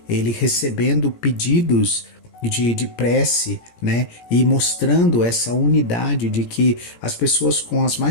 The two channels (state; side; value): late; right; 17 ms